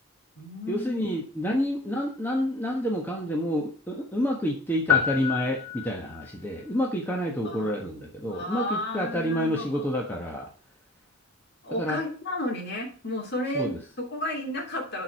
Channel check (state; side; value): normal; both; correlation 0.48